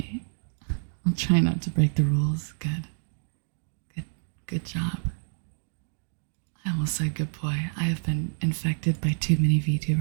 I'll try not to break the rules. Good job. I almost said good boy. I have been infected by too many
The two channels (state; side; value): silent; left; digital silence